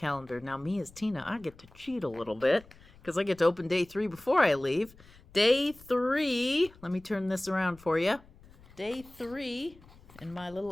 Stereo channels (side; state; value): left; noise; rumble, 24 dB below the sound